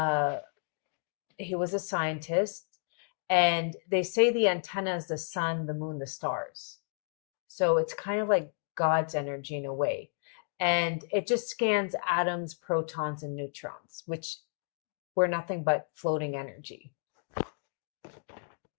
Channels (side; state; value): right; silent; digital silence